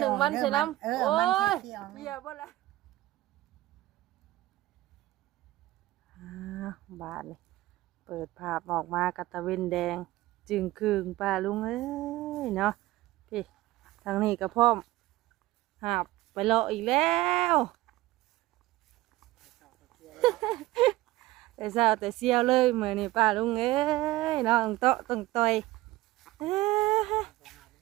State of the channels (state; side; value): quieter; left; 17.5 dB